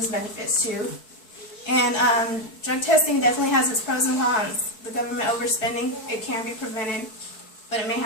benefits too. And drug testing definitely has its pros and cons. The government overspending, it can be prevented, but it may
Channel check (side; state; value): right; late; 4.6 ms